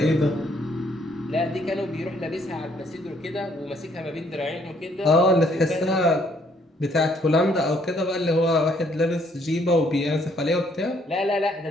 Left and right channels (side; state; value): both; normal; correlation 0.66